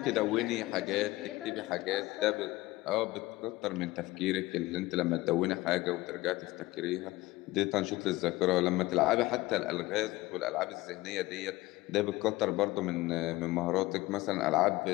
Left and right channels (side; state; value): right; quieter; 19.1 dB